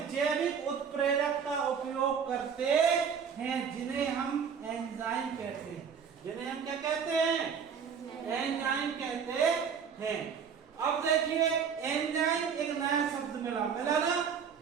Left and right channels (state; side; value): quieter; left; 6.9 dB